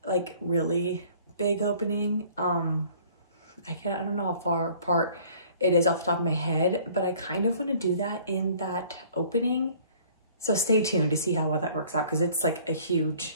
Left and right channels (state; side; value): inverted; both; correlation -0.54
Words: like really big opening. I don't know how far apart it is off the top of my head, but I kind of want to do that in that opening. So stay tuned to see how well that works out, because it's like a huge